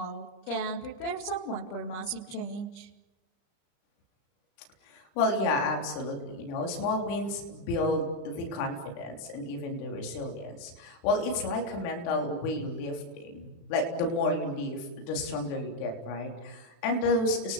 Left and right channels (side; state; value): right; late; 35 ms